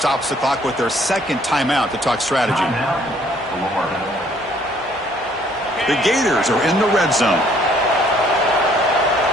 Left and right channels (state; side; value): normal; both; correlation 0.62